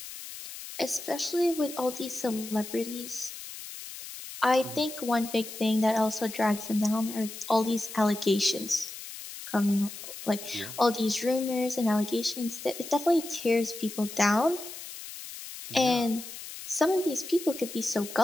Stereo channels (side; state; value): left; noise; hiss, 12 dB below the sound